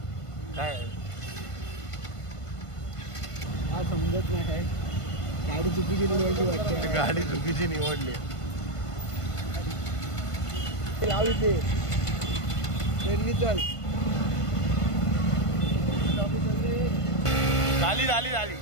काय हा समजत नाही काय. गाडी चुकीची निवडली वाटते. गाडी चुकीची निवडली. लाव इथे चल. झाली.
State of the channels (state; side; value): late; right; 1.5 ms